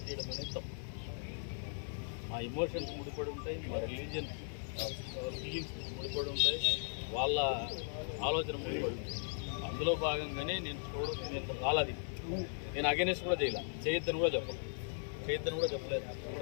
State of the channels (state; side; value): silent; right; 52 dB below the other